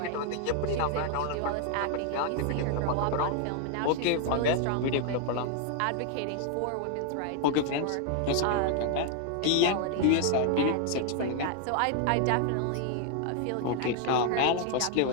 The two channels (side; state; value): both; different; correlation 0.00